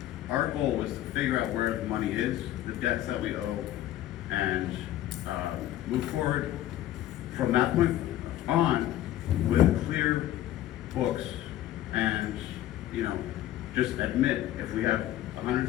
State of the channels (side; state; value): right; quieter; 13.4 dB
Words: our goal was to figure out where the money is, the debts that we owe, and move forward from that point on with clear books and, just admit if we have